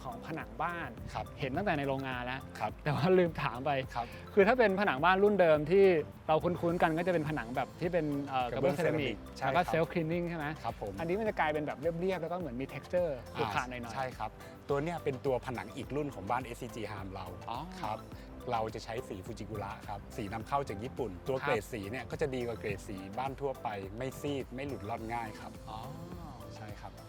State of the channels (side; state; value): both; identical; correlation 1.00